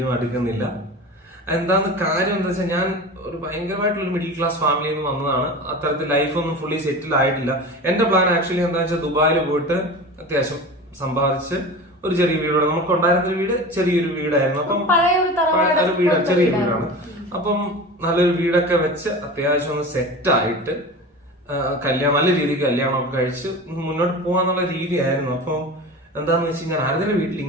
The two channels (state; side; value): normal; both; correlation 0.32